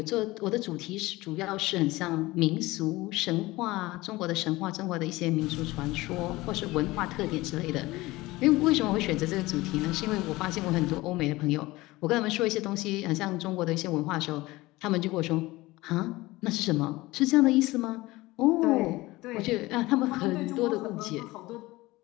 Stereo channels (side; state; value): right; quieter; 19.8 dB